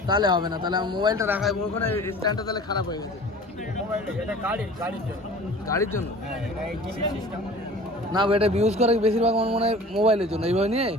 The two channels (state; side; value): normal; both; correlation 0.43